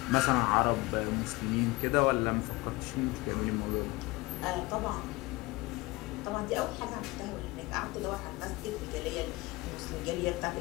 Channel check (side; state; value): right; quieter; 21.8 dB